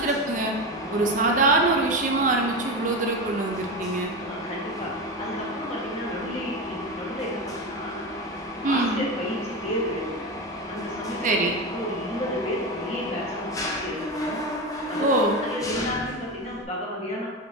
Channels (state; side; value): normal; both; correlation 0.19